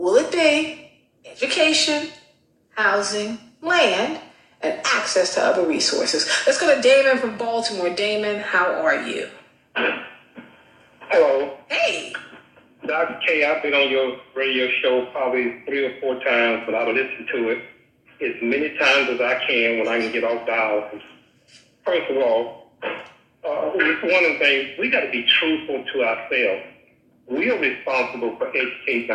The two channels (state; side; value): identical; both; correlation 1.00